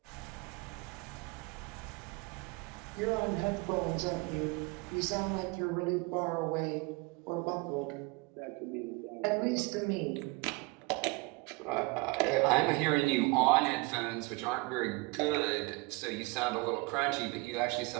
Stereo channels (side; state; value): left; quieter; 25.7 dB